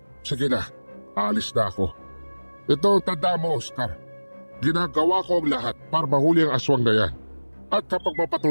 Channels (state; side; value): inverted; both; correlation -1.00